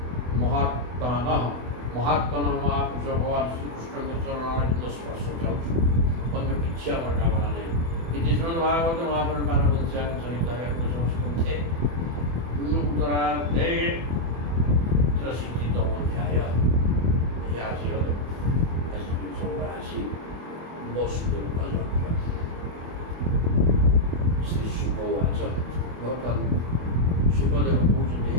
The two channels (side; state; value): left; late; 24 ms